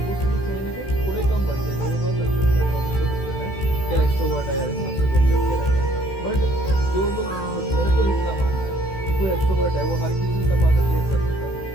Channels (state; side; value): late; right; 16 ms